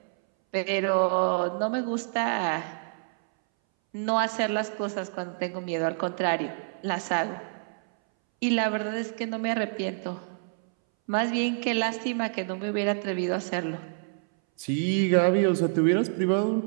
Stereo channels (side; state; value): left; silent; 60 dB below the other